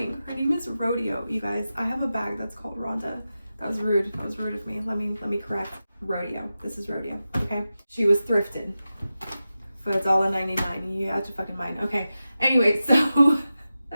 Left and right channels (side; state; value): both; inverted; correlation -0.93